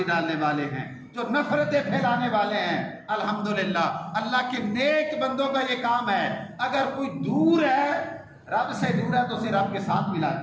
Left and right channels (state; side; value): identical; both; correlation 1.00